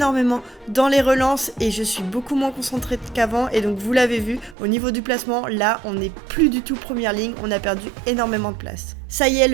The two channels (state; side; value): drops out; left; at 4.5 s